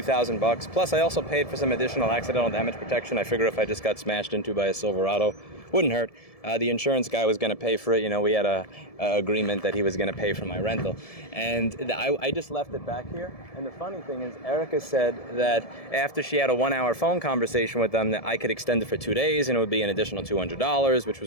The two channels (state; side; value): late; right; 1.7 ms